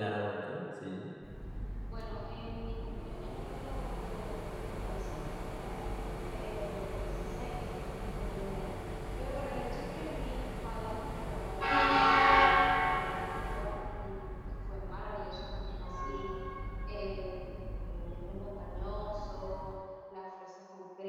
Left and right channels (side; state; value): both; identical; correlation 1.00